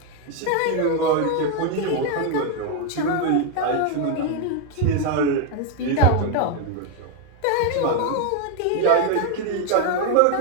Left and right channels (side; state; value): both; different; correlation 0.01